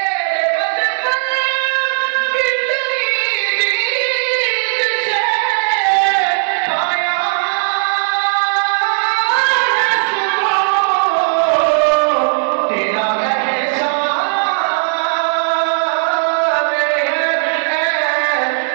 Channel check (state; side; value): silent; left; digital silence